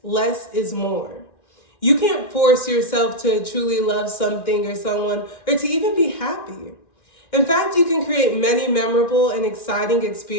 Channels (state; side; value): late; right; 1.9 ms